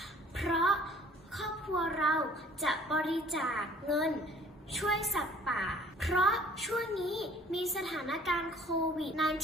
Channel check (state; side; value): normal; both; correlation 0.54